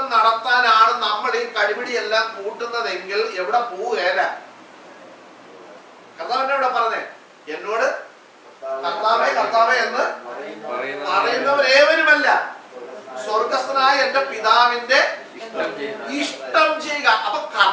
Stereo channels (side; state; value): both; identical; correlation 1.00